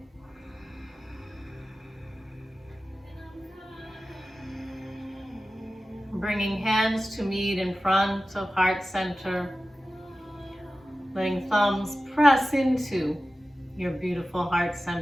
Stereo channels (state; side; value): normal; both; correlation 0.95